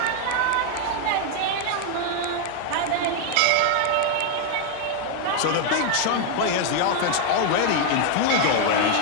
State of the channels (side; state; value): both; different; correlation 0.00